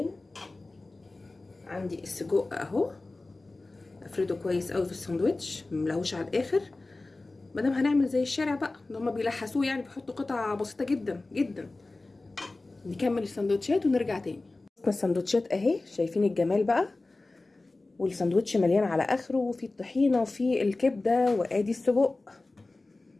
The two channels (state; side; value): quieter; right; 3.2 dB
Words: عندي السجق اهو، افرده كويس قوي في الساندوتش، مملهوش على الاخر. مادام هنعمل زي الشارع بقى اللي هما بيلحسوه، يعني بيحطوا قطع بسيطه جدا جدا. نكمل السندوتشات ونرجع تاني. السندوتشات اهي، شايفين الجمال بقى، والساندوتش مليان على اخره، وفي الطحينه وفي الكبده، وادي السجق.